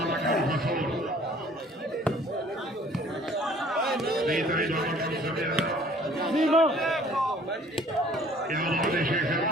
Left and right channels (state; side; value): normal; both; correlation 0.55